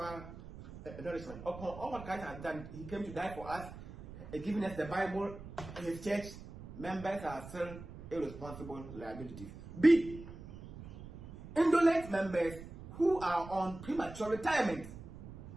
nourishment. Upon all what Christ has done, He came to die for us, giving us the Bible, His church. Members are still irresponsible liabilities. B. Indolent members who are on premature retirement.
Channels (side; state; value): right; noise; rumble, 14 dB below the sound